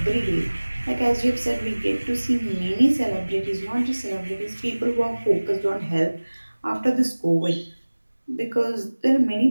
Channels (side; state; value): both; inverted; correlation -1.00